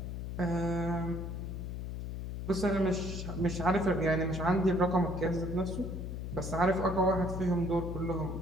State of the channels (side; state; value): left; noise; hum, 5 dB below the sound